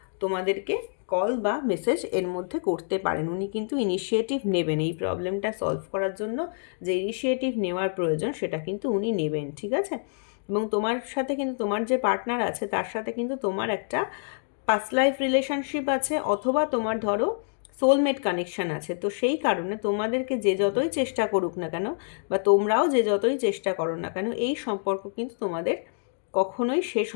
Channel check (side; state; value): right; silent; digital silence